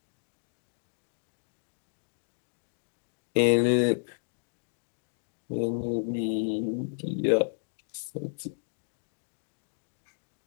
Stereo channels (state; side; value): silent; right; digital silence